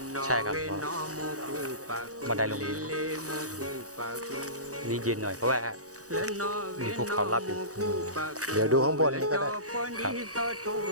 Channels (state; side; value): late; left; 0.66 ms